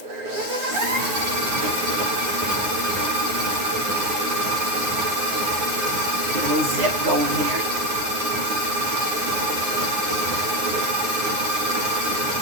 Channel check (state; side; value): late; left; 9.5 ms